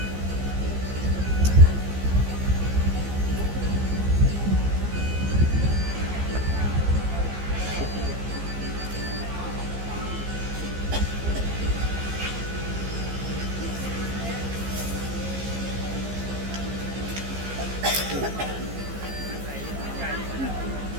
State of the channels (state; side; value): late; left; 15 ms